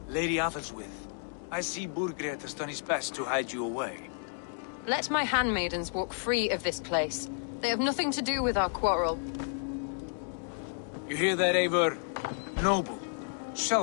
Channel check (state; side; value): silent; right; 57 dB below the other